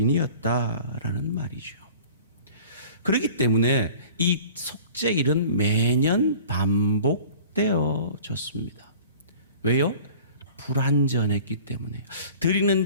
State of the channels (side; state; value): both; inverted; correlation -0.45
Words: 말이죠. 그렇기 때문에 이 속죄일은 매년 반복되어졌습니다. 왜요? 불완전했기 때문에요.